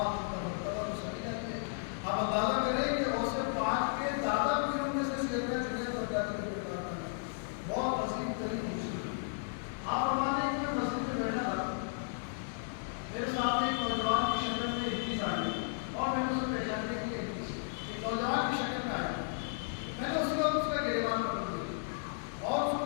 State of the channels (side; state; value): right; silent; digital silence